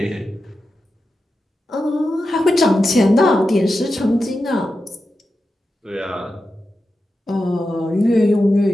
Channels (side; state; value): both; normal; correlation 0.90